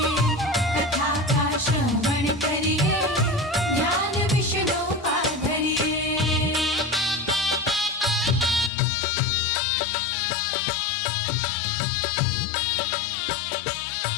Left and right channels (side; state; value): right; drops out; at 8.7 s